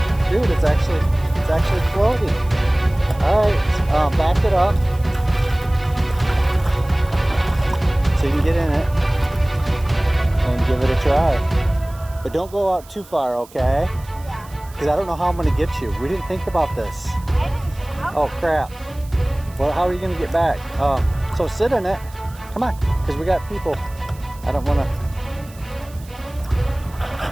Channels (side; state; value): right; noise; hiss, 23 dB below the sound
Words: Dude, it's actually floating. Alright, back it up so you can get in it and give it a try. But don't go out too far, okay? Yeah. Because I don't know how I'm going to get you. We didn't think about this. Oh crap. Well, how are you going to get back? So sit in it. Come on, because we got people. I don't want to.